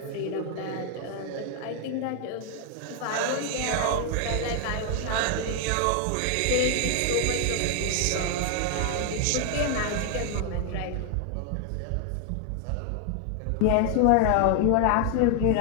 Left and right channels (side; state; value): both; different; correlation 0.00